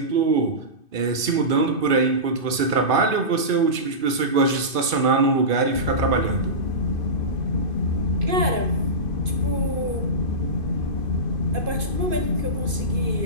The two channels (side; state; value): left; late; 2.5 ms